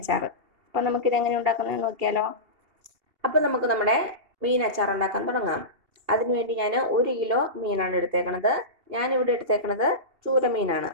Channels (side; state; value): left; late; 2.7 ms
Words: അപ്പോൾ നമുക്കിതെങ്ങനെ ഉണ്ടാക്കുന്നത് നോക്കിയാലോ. അപ്പോൾ നമുക്ക് നമ്മുടെ മീൻ അച്ചാർ ഉണ്ടാക്കാൻ തുടങ്ങാം. അതിനുവേണ്ടി ഞാൻ 1 കിലോ മീനാണ് എടുത്തേക്കണത്. ഞാനിവിടെ എടുത്തേക്കണത് ചൂരമീനാണ്.